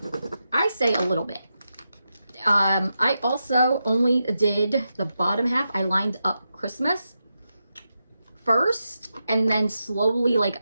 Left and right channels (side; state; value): both; inverted; correlation -0.88